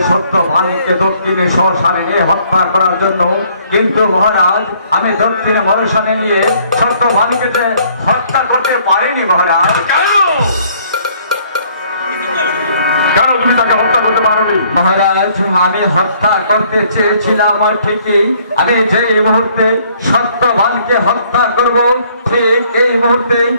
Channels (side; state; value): both; inverted; correlation -0.62